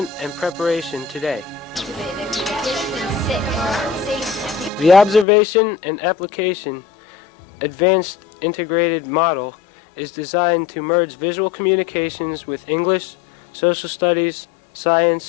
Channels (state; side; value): drops out; right; at 5.2 s